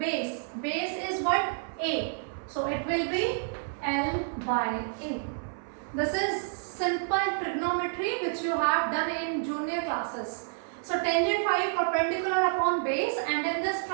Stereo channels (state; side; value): silent; left; 58 dB below the other